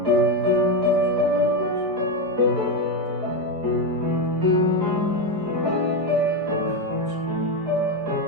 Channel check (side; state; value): left; late; 5.2 ms